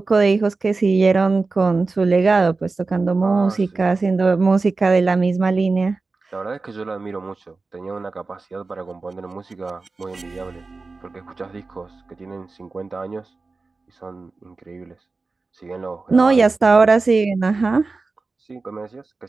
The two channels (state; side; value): quieter; left; 3.8 dB